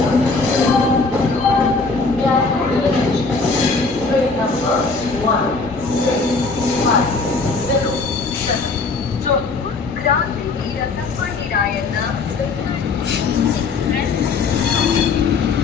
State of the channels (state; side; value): quieter; right; 4.2 dB